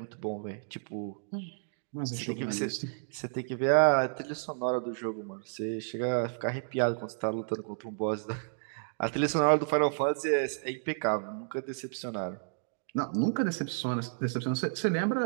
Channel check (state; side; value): silent; left; digital silence